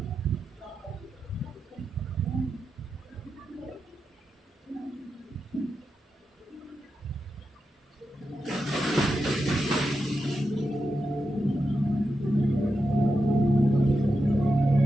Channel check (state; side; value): normal; both; correlation 0.88